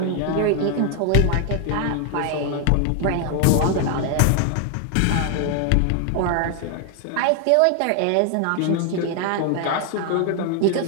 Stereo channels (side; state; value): both; different; correlation 0.00